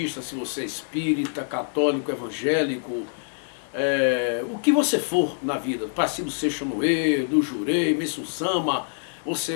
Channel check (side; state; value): right; silent; digital silence